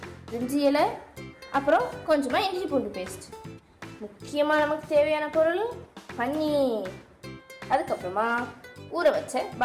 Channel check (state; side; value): identical; both; correlation 1.00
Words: பிரிஞ்சி இலை, அப்புறம் கொஞ்சமாக இஞ்சி பூண்டு பேஸ்ட். முக்கியமாக நமக்கு தேவையான பொருள் பன்னீர். அதுக்கப்புறமா ஊற வச்ச